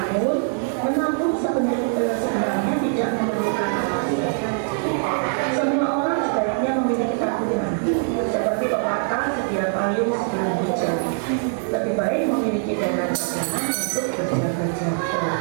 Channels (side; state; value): left; silent; 64 dB below the other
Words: menabung sebenarnya tidak memerlukan alasan. Semua orang sebaiknya memiliki tabungan, seperti pepatah sedia payung sebelum hujan. Lebih baik memiliki dana cadangan untuk berjaga-jaga.